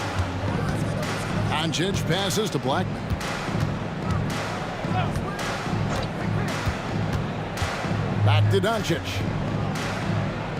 Doncic passes to Blackman. Back to Doncic.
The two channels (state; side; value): identical; both; correlation 1.00